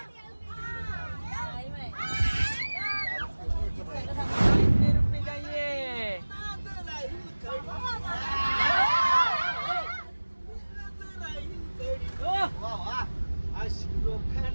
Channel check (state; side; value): inverted; both; correlation -1.00